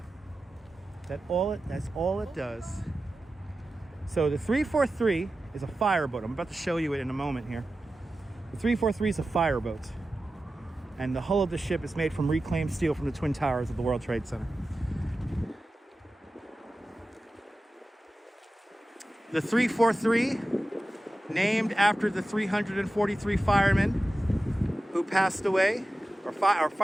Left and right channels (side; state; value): both; normal; correlation 0.94